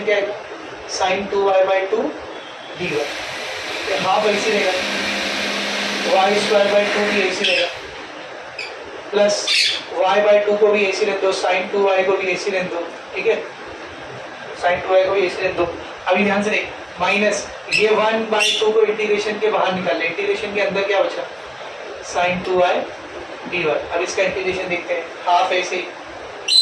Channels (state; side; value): identical; both; correlation 1.00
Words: क्या आएगा, sin 2y by 2 dy, half ऐसे रहेगा, y स्क्वायर बाई 2 भी ऐसे रहेगा, प्लस y बाई 2 को भी ऐसे रख दो, sin 2y को भी ऐसे रख दो, ठीक है, sin 2y को भी ऐसे रख दो। अभी ध्यान से देख, माइनस ये 1 बाई 2 को इंटीग्रेशन के बाहर निकाल ले, इंटीग्रेशन के अंदर क्या बचा, sin 2y dy। अब इसका इंटीग्रेशन देखते हैं, हाफ ऐसे ही